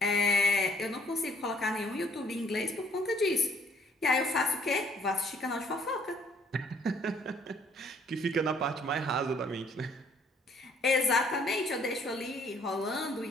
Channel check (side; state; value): both; normal; correlation 0.62